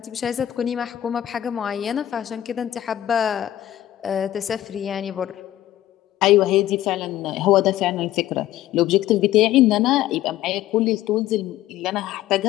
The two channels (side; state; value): right; quieter; 13.3 dB